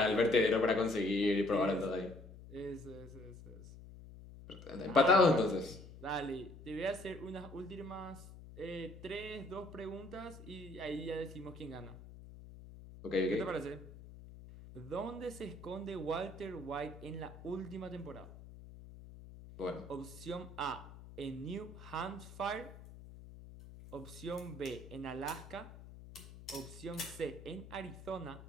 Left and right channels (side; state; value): left; noise; hum, 15 dB below the sound